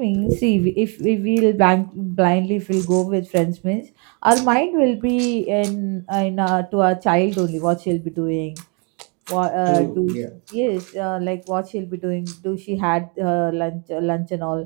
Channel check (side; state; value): left; quieter; 34.4 dB